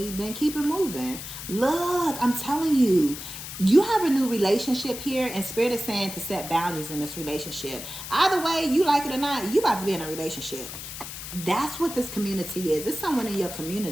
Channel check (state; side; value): noise; left; hiss, 9 dB below the sound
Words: then keep it moving. Look, I'm telling you, you have a new relationship here, and Spirit is saying to set boundaries in this relationship. Either way, you like it or not, you about to be in a relationship. That's what this community is. It's someone in your